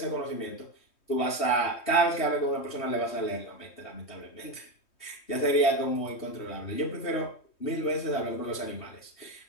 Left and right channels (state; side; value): late; right; 3.2 ms